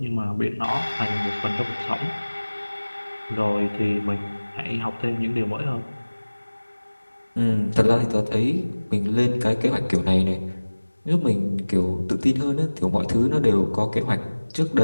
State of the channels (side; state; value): both; inverted; correlation -1.00